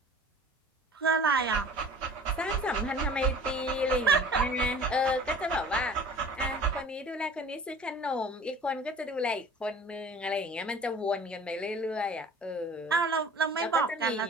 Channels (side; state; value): both; normal; correlation 0.45